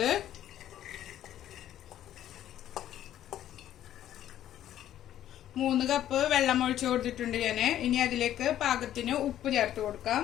മൂന്ന് കപ്പ് വെള്ളം ഒഴിച്ചു കൊടുത്തിട്ടുണ്ട് ഞാൻ. ഇനി അതിലേക്ക് പാകത്തിന് ഉപ്പ് ചേർത്ത് കൊടുക്കാം.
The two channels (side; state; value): right; quieter; 11.8 dB